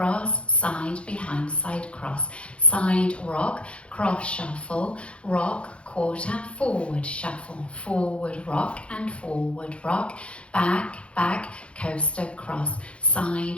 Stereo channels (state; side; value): late; right; 0.060 ms